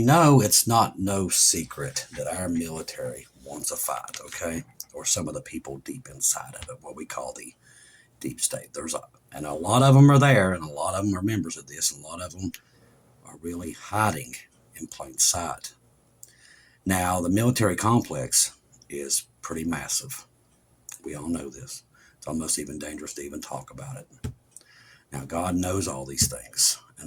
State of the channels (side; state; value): both; identical; correlation 1.00